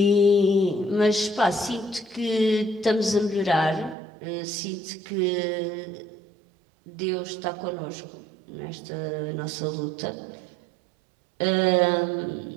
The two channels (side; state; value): left; drops out; at 4.0 s